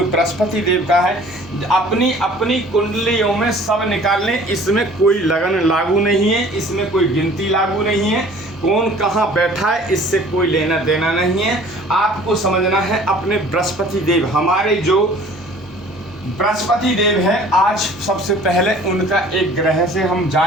बृहस्पति देव का है। अपनी अपनी कुंडलियों में सब निकाल लें, इसमें कोई लगन लागू नहीं है, इसमें कोई गिनती लागू नहीं है, कौन कहाँ बैठा है इससे कोई लेना देना नहीं है। आपको समझना है अपने बृहस्पति देव, हमारे जो बृहस्पति देव है, आज सबसे पहले उनका एक ग्रह से हम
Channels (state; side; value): normal; both; correlation 0.50